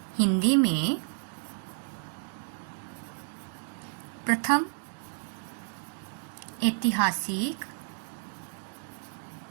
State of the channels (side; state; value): left; silent; digital silence